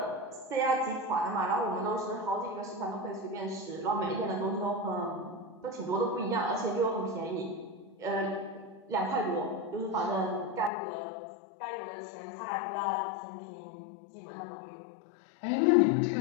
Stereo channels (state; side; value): drops out; right; at 10.7 s